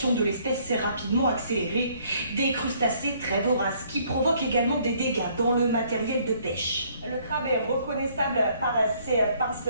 de l'espèce s'est rapidement accélérée. Des crustacés très voraces qui provoquent également des dégâts dans le matériel de pêche. Le crabe est reconnaissable par ses pinces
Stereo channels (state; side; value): inverted; both; correlation -0.63